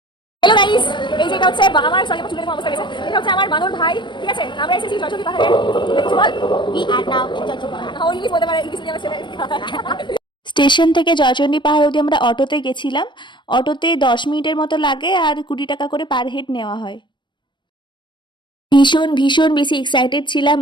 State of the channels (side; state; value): right; late; 0.22 ms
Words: হ্যালো গাইস, এই যে এটা হচ্ছে আমার সরি আমার চুলের অবস্থা গেছে। এটা হচ্ছে আমার বানর ভাই, ঠিক আছে? আমরা এসেছি জয়চণ্ডী পাহাড়ে। দেখছো বল? We are now in Joychandi পাহাড়। ও ইংলিশ বলতে পারে, ইংলিশ নিয়ে ছেলে। স্টেশন থেকে জয়চণ্ডী পাহাড় অবধি আমরা অটোতে গেছিলাম। অটোতে 10 মিনিটের মতো লাগে আর 20 টাকা করে পার হেড নেওয়া হয়। ভীষণ ভীষণ বেশি এক্সাইটেড ছিলাম